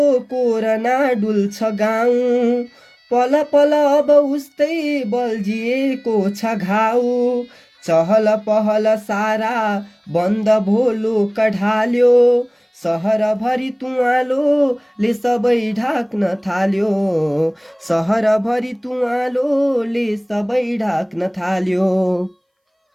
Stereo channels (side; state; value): both; identical; correlation 1.00